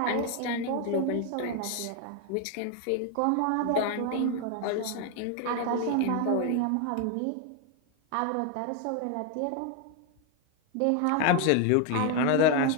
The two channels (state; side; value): different; both; correlation 0.01